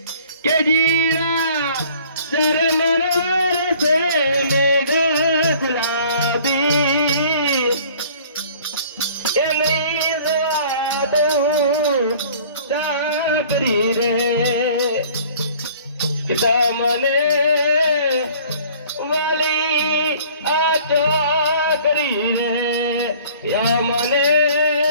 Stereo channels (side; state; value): both; inverted; correlation -0.52